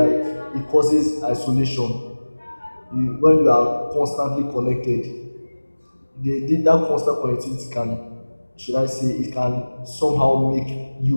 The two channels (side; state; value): both; inverted; correlation -1.00